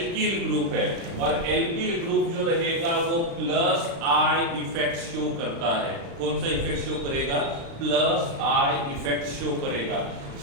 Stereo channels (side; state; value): left; late; 36 ms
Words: ग्रुप है और एल्किल ग्रुप जो रहेगा वो प्लस आई इफेक्ट शो करता है। कौन सा इफेक्ट शो करेगा? प्लस आई इफेक्ट शो करेगा।